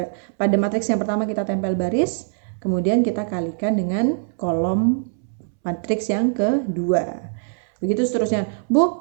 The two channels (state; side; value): silent; left; 64 dB below the other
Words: Pada matriks yang pertama kita tempel baris, kemudian kita kalikan dengan kolom matriks yang kedua. Begitu seterusnya. Bu,